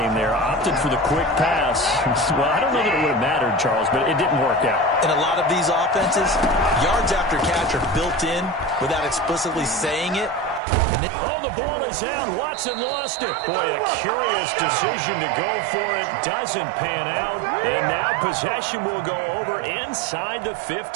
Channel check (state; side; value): drops out; left; at 10.6 s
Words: there. Opted for the quick pass. Well, I don't know that it would have mattered, Charles, but it didn't work out. In a lot of these offenses, yards after catch are built in without explicitly saying it. Oh, the ball is out. Watson lost it. Boy, a curious decision to go for it. Doesn't pan out. And now possession will go over inside the